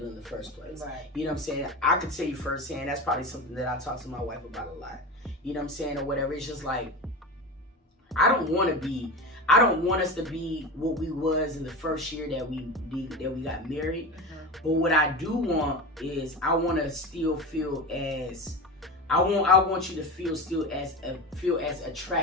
in the first place. You know what I'm saying? I could tell you firsthand, that's probably something that I talk to my wife about a lot. You know what I'm saying? Or whatever. It's just like, I don't want us to be what we was in the first year that we got married. But what I do want is, I want to still feel as, I want you to feel as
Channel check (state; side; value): normal; both; correlation 0.25